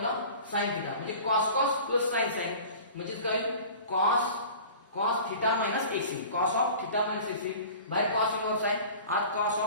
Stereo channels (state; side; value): inverted; both; correlation -0.41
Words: ला sin थिटा म्हणजे cos प्लस sin म्हणजे काय cos theta x cos of theta x बाहेर cos इनव्हर्स आहे आत cos